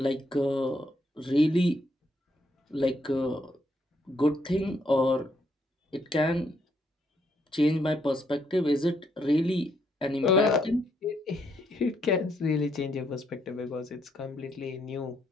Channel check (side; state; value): both; normal; correlation 0.74